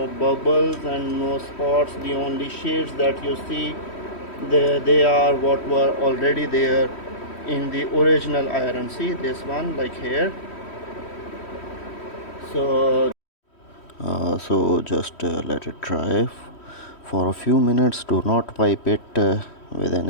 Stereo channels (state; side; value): late; right; 3.1 ms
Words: bubbles and no spots. The only shades that you see, they are what were already there in the original iron. See this one, like here. So So just let it dry for a few minutes. Do not wipe it with